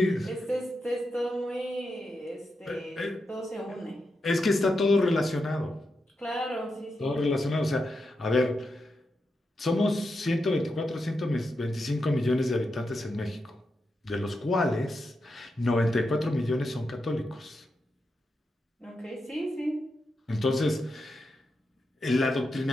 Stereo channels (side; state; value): both; normal; correlation 0.87